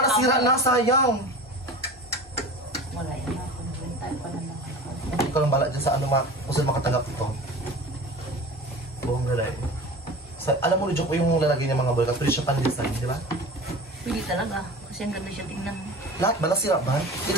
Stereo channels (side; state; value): both; normal; correlation 0.36